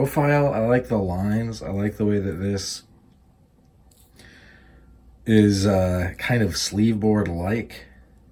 I like the lines. I like the way that this is kind of sleeve board-like,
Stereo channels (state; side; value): identical; both; correlation 1.00